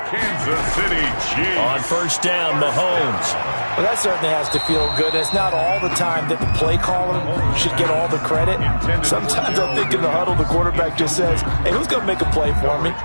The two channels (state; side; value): inverted; both; correlation -1.00